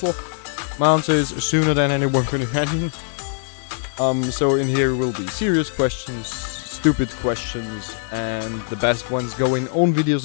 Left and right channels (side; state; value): right; silent; digital silence